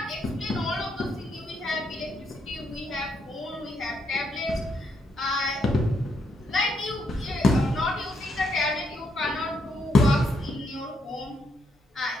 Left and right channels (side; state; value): both; normal; correlation 0.77